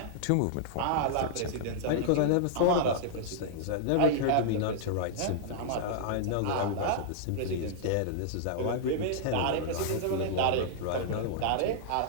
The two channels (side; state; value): both; different; correlation -0.01